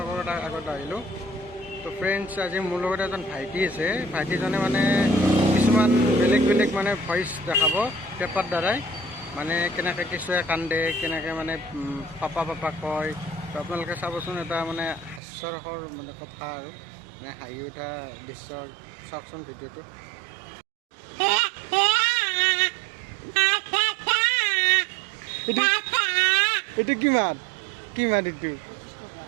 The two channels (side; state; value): left; drops out; at 15.2 s